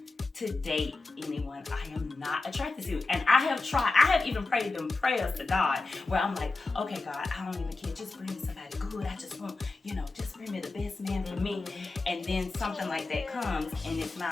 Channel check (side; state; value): right; quieter; 3.5 dB